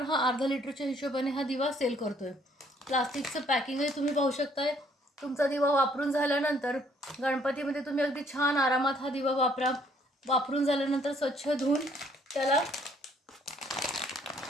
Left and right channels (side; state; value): both; normal; correlation 0.64